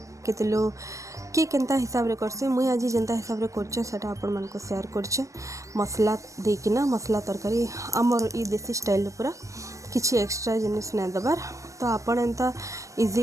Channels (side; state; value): left; late; 0.15 ms